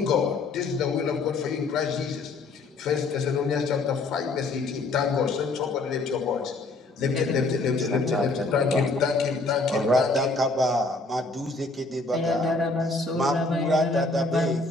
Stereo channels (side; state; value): right; quieter; 3.3 dB